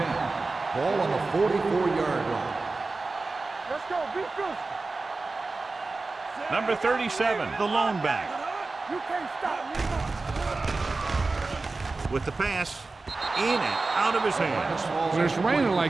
Ball on the 44-yard line. Let's go. Be good. Number 37, the lone back. You can't stop me. With the pass, in and out of his hands. When it's raining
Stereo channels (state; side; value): quieter; left; 3.6 dB